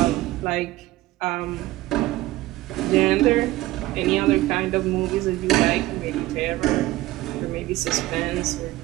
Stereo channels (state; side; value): quieter; left; 17.4 dB